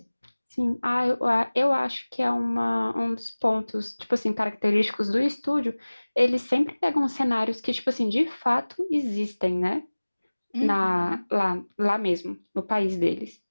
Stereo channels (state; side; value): inverted; both; correlation -1.00